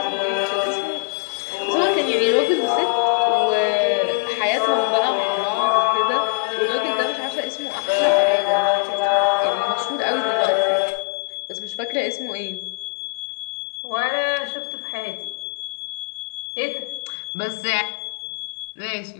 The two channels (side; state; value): right; silent; 64 dB below the other